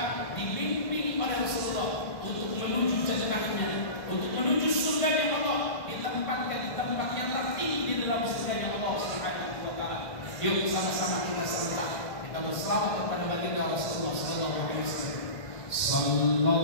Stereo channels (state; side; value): late; right; 1.6 ms